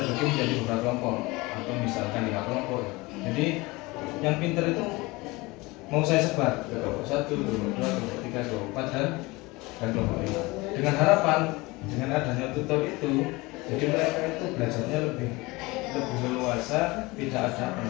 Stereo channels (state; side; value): quieter; right; 22.9 dB